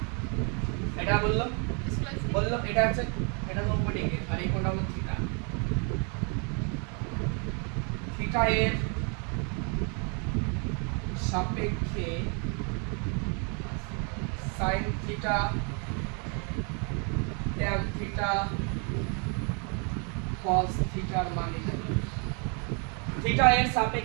এটা বললাম এটা হচ্ছে, এটা 90 ডিগ্রি, আর এই কোণটা হলো থিটা। থিটা এর সাপেক্ষে sin theta tan theta cos থিটার মান নির্ণয় করো। থিটা এর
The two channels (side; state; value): left; quieter; 36.9 dB